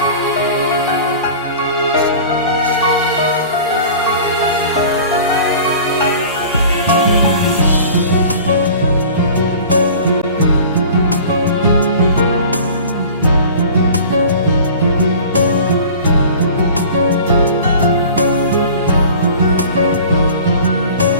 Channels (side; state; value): both; inverted; correlation -0.42